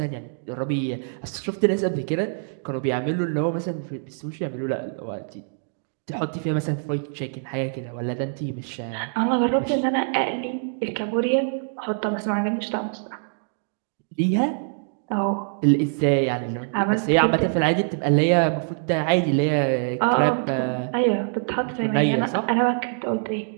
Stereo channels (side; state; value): left; silent; digital silence